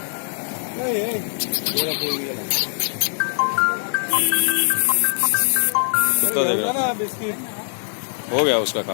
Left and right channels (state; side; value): silent; right; 56 dB below the other